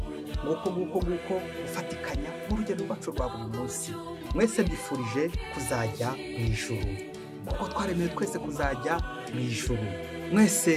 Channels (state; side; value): identical; both; correlation 1.00